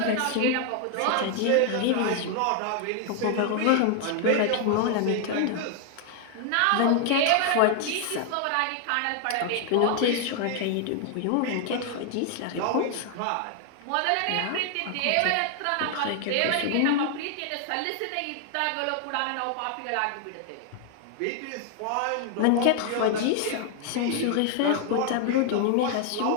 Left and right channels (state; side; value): different; both; correlation 0.00